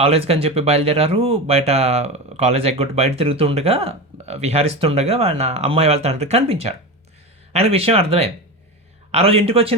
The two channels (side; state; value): both; normal; correlation 0.23